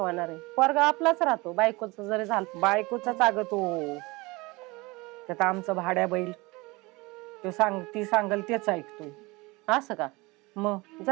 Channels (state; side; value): quieter; left; 23.8 dB